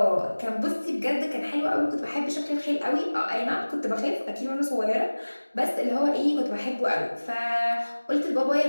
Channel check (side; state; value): both; inverted; correlation -1.00